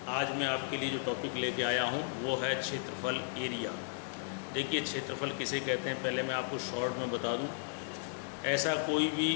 आज मैं आपके लिए जो टॉपिक लेके आया हूँ वो है क्षेत्रफल, एरिया। देखिए, क्षेत्रफल किसे कहते हैं पहले मैं आपको शॉर्ट में बता दूँ। ऐसा कोई भी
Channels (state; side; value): silent; right; digital silence